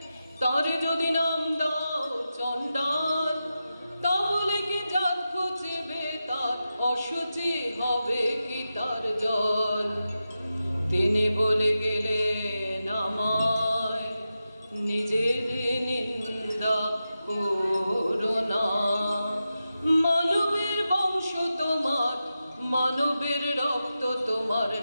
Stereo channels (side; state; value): both; inverted; correlation -0.91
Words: তারে যদি নাম দাও চণ্ডাল, তাহলে কি জাত খুঁজবে তার? অশুচি হবে কি তার জল? তিনি বলে গেলেন আমায়, নিজের নিন্দা করো না। মানবের বংশ তোমার, মানবের রক্ত তোমার